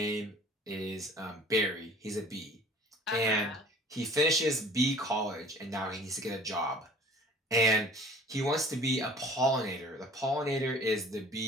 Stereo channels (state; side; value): normal; both; correlation 0.48